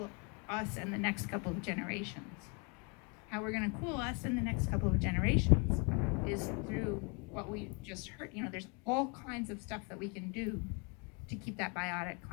us and the next couple of generations. How we're going to cool us in the next couple of generations is through what we just heard. There's all kinds of stuff that we can do to keep that biotic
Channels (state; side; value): quieter; right; 33.3 dB